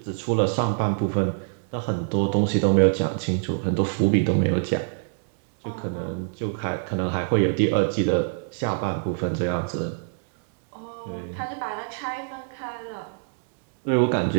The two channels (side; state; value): left; silent; digital silence